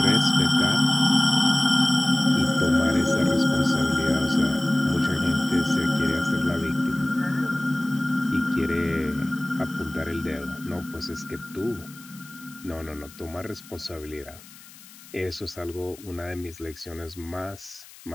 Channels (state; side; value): noise; left; hiss, 21 dB below the sound